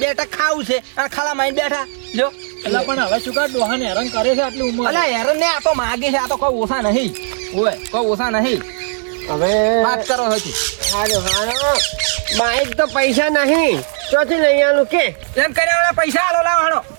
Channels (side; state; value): left; silent; digital silence